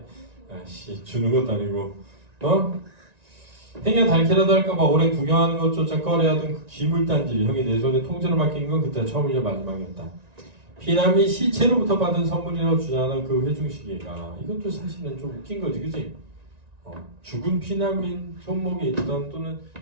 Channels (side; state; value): left; late; 1.9 ms